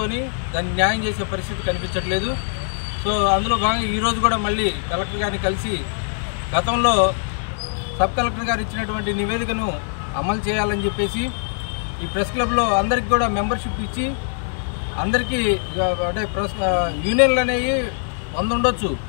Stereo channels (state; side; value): silent; right; 64 dB below the other